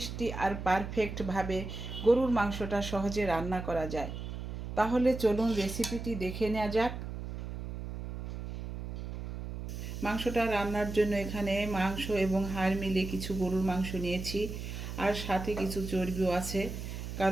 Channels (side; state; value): right; noise; hum, 7 dB below the sound